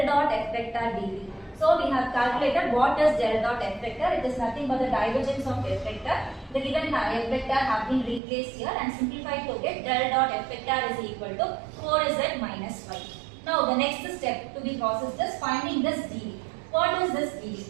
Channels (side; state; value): left; drops out; at 8.2 s